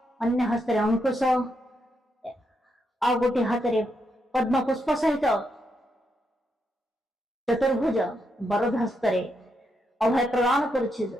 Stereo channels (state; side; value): normal; both; correlation 0.81